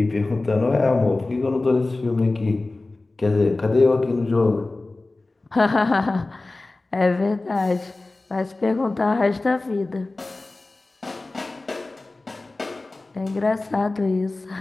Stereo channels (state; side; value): quieter; right; 3.1 dB